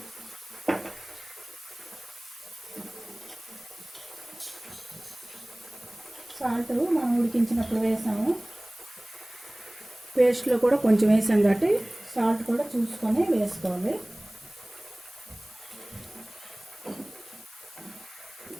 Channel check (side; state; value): left; noise; hiss, 20 dB below the sound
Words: సాల్ట్ మనం ఉడికించినప్పుడు వేసాము, పేస్ట్లో కూడా కొంచెం వేసాం కాబట్టి సాల్ట్ కూడా చూసుకొని వేసుకోవాలి.